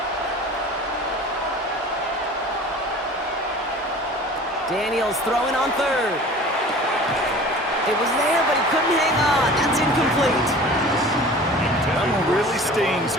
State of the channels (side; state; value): both; normal; correlation 0.42